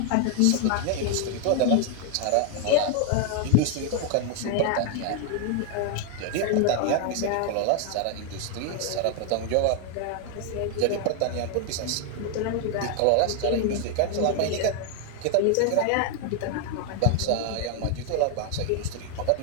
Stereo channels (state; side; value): different; both; correlation 0.00